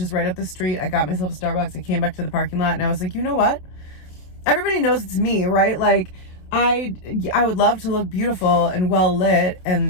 right up the street. I got myself a Starbucks. I came back to the parking lot, and I was like, you know what? Everybody knows it's me, right? Like I would love to look beautiful and well lit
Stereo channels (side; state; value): right; late; 27 ms